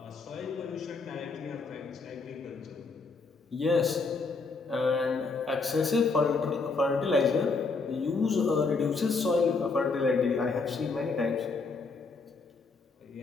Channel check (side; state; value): right; quieter; 4.2 dB